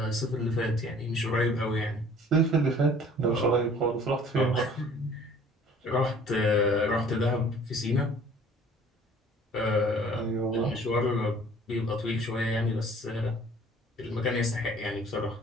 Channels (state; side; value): normal; both; correlation 0.52